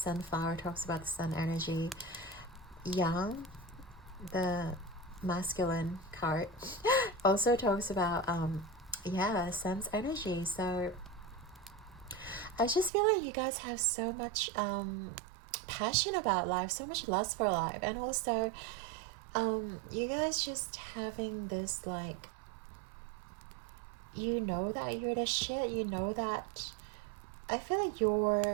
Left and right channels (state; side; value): drops out; left; at 12.9 s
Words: talks about the sun energy. Yang, the masculine card, also talks about yeah, sun's energy. So I just feel like you guys have so much passion about life, so much lust for life, and also you guys just having this like, you know that you're the shit, you know that, I feel like